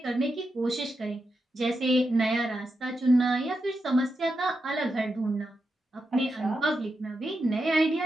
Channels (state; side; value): normal; both; correlation 0.87